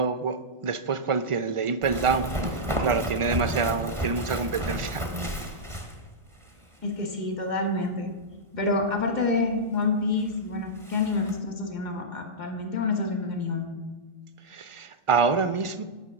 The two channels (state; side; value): late; left; 1.4 ms